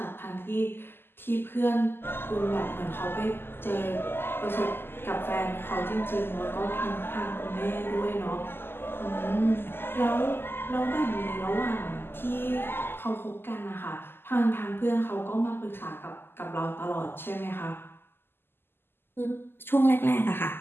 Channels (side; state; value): right; late; 0.11 ms